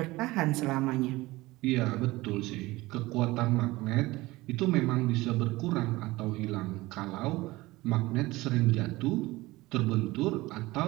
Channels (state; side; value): quieter; left; 19.9 dB